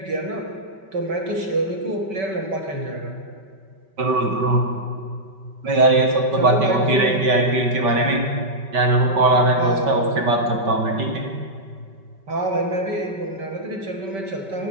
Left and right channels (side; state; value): left; late; 5.2 ms